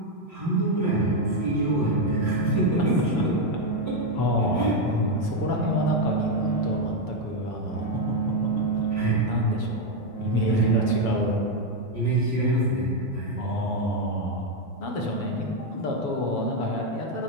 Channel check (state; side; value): late; right; 7.1 ms